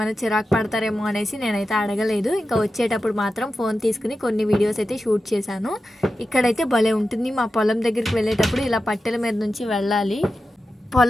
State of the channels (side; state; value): both; normal; correlation 0.92